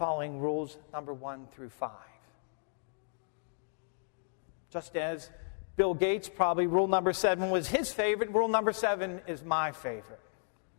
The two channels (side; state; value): right; silent; digital silence